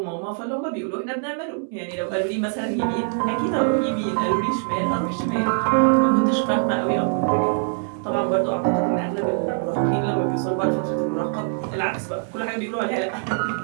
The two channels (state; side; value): silent; left; 63 dB below the other